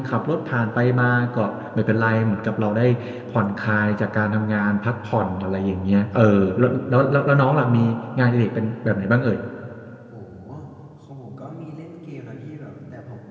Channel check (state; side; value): identical; both; correlation 1.00